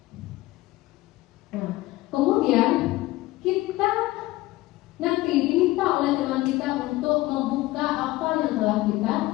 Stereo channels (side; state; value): right; quieter; 18.4 dB